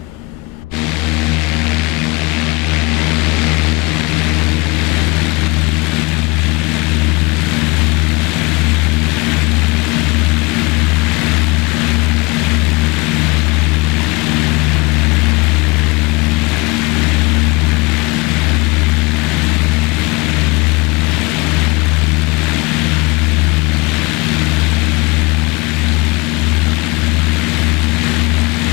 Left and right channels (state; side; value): quieter; right; 26.7 dB